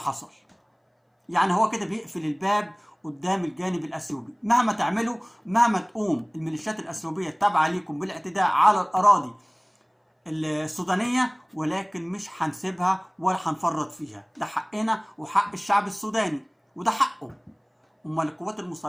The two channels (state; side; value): identical; both; correlation 1.00